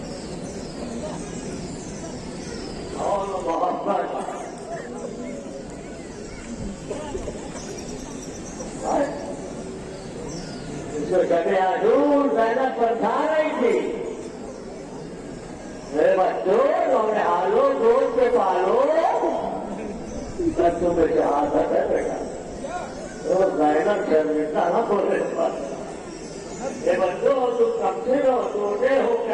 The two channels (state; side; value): identical; both; correlation 1.00